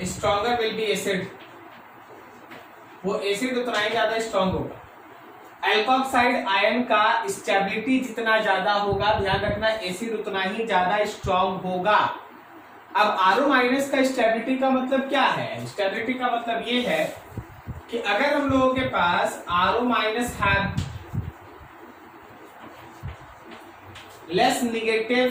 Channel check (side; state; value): both; identical; correlation 1.00